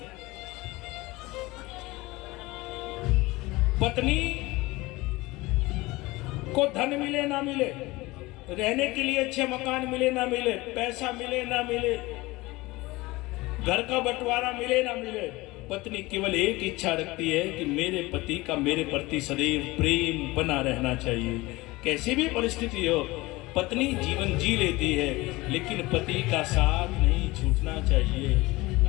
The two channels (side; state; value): right; quieter; 21.1 dB